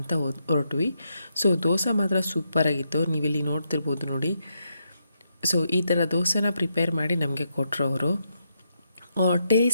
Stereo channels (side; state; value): both; inverted; correlation -0.81